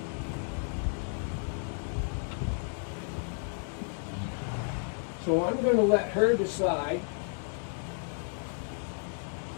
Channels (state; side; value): silent; right; 56 dB below the other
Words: So I'm going to let her decide.